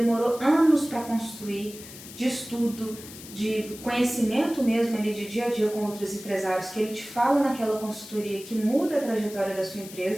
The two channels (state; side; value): noise; left; hiss, 15 dB below the sound